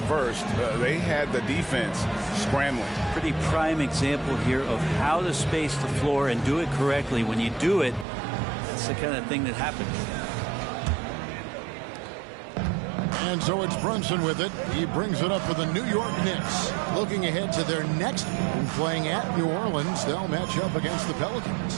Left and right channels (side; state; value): left; drops out; at 8.1 s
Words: They had the defense scrambling. Pretty prime example here of how to space the floor and do it correctly. When you do it, it's the kind of thing that happens. And so it's Brunson with it. He brings it up for the New York Knicks. Looking ahead to their next game, playing at New Orleans, they'll match up against the